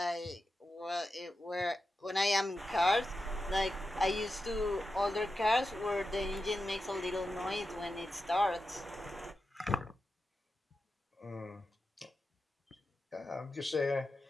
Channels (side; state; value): both; normal; correlation 0.90